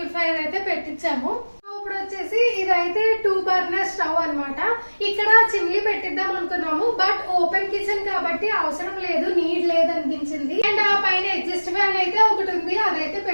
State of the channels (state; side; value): inverted; both; correlation -1.00